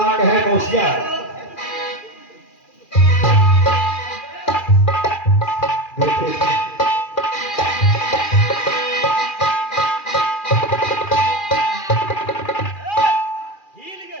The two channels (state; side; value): late; right; 2.4 ms